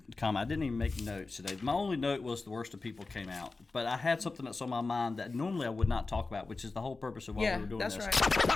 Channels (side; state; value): right; quieter; 3.7 dB